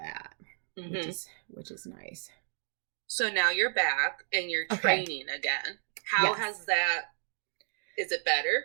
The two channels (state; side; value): silent; left; digital silence